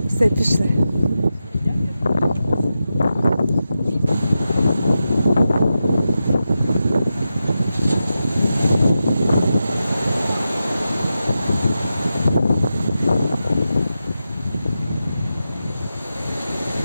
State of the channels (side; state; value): both; inverted; correlation -0.90